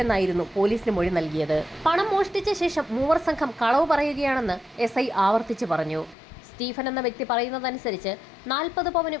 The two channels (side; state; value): right; drops out; at 6.2 s